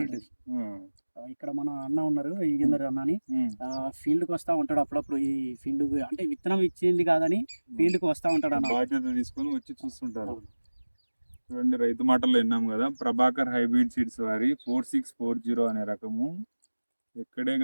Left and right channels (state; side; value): inverted; both; correlation -1.00